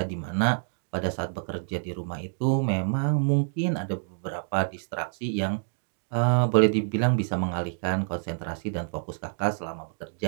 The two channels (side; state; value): left; silent; digital silence